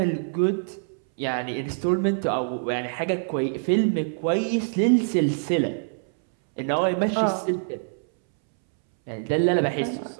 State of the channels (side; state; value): left; silent; 62 dB below the other